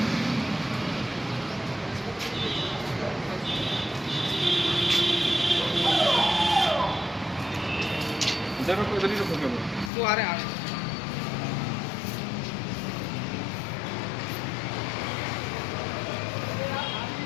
वो आ रहे हैं।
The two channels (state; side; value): drops out; right; at 9.9 s